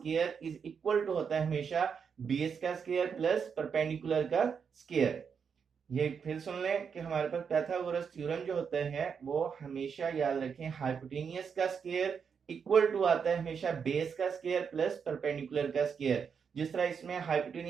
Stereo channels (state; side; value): quieter; left; 6.5 dB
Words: इज इक्वल टू होता है हमेशा बेस का स्क्वायर प्लस परपेंडिकुलर का स्क्वायर। ये फिर सुन लें कि हमारे पास पाइथागोरस थ्योरम जो होता है वो हमेशा याद रखें हाइपोटेनियस का स्क्वायर इक्वल टू आता है हमेशा बेस का स्क्वायर प्लस परपेंडिकुलर का स्क्वायर। जिस तरह इसमें